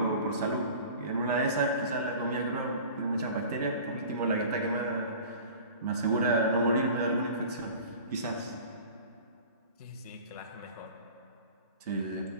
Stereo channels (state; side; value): inverted; both; correlation -0.41